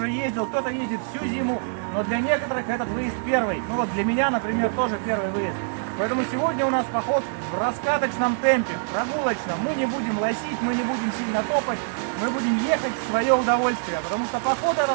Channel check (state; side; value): silent; left; 62 dB below the other